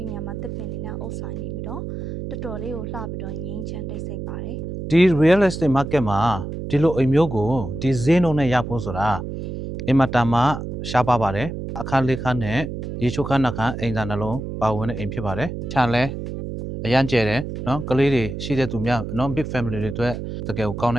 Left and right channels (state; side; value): noise; right; hum, 6 dB below the sound